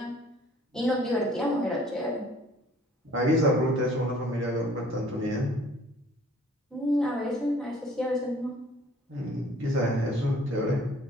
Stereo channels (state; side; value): normal; both; correlation 0.54